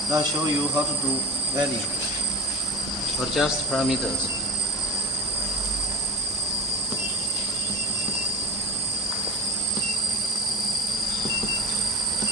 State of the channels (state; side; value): normal; both; correlation 0.30